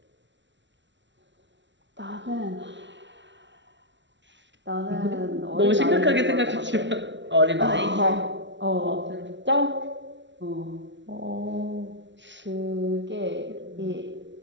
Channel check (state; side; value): late; left; 0.53 ms